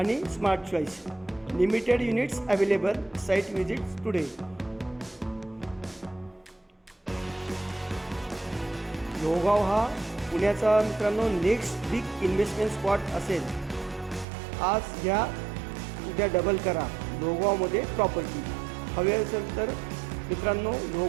smart choice. Limited units available. Site visits today. Lohegaon हा पुण्याचा मित्रांनो नेक्स्ट बिग इन्व्हेस्टमेंट स्पॉट असेल. आज घ्या, उद्या डबल करा. लोहगावमध्ये प्रॉपर्टी हवी असेल तर मित्रांनो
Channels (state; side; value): drops out; left; at 14.2 s